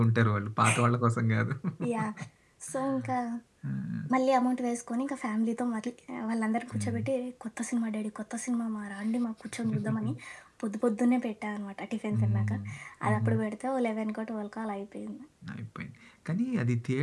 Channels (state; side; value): identical; both; correlation 1.00